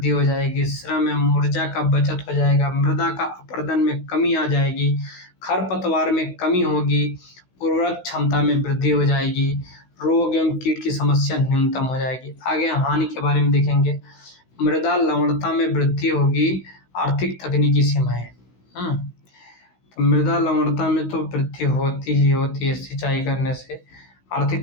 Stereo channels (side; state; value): right; late; 16 ms